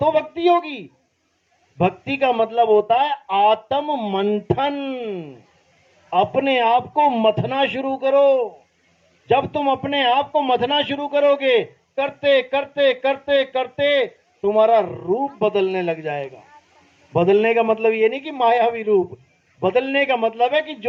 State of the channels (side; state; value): both; identical; correlation 1.00